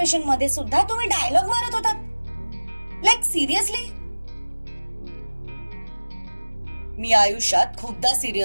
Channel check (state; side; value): inverted; both; correlation -1.00